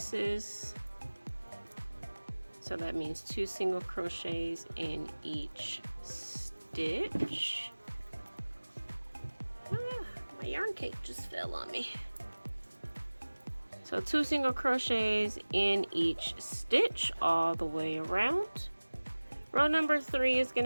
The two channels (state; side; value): inverted; both; correlation -1.00